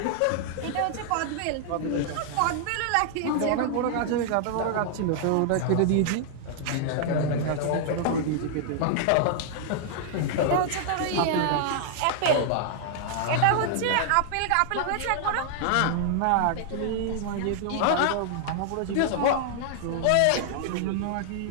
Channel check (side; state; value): both; different; correlation -0.01